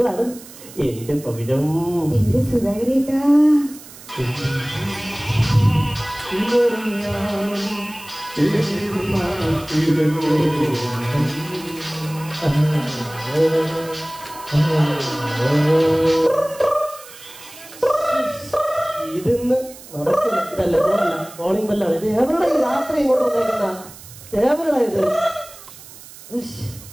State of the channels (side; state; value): right; noise; hiss, 18 dB below the sound